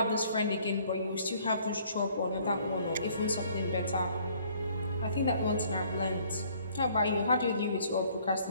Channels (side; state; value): both; inverted; correlation -0.60